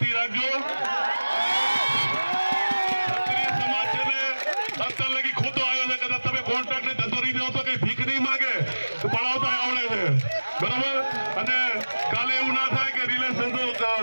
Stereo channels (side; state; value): both; inverted; correlation -1.00